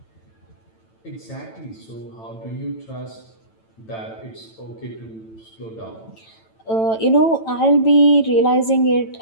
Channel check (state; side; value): late; right; 9.0 ms